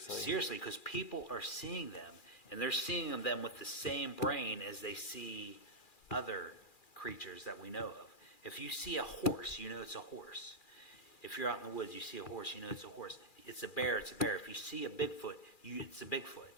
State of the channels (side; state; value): right; late; 2.4 ms